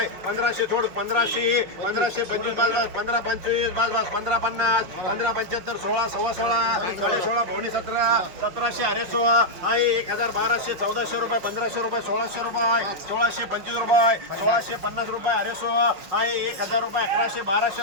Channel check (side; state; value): left; late; 5.9 ms